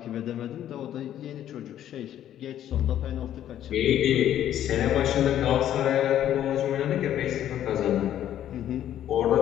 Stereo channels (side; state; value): right; quieter; 11.3 dB